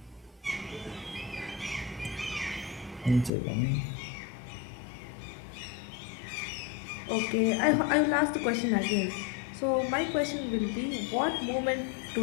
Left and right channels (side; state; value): right; drops out; at 3.3 s